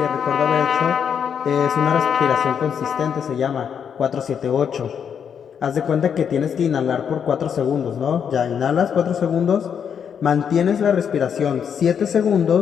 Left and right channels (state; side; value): quieter; right; 7.6 dB